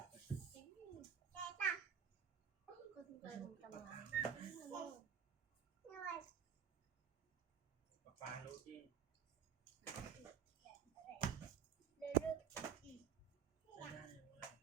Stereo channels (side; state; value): left; quieter; 8.1 dB